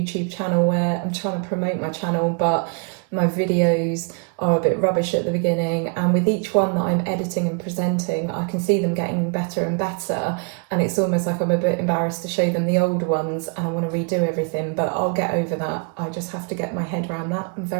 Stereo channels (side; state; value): left; quieter; 38.5 dB